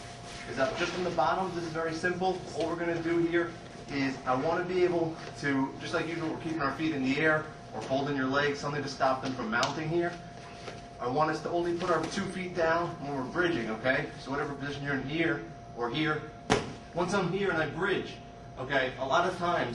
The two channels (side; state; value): both; identical; correlation 1.00